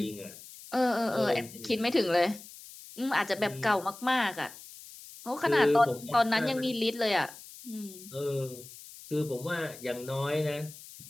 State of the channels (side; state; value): left; noise; hiss, 17 dB below the sound